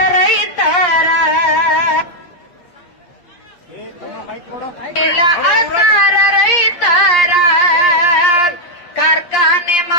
ರೈತರ. ಅಳ್ತಾರ ರೈತರ. ಕಾರ್ಖಾನೆ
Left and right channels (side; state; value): right; late; 8.5 ms